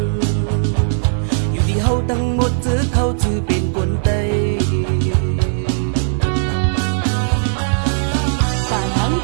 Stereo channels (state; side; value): silent; left; digital silence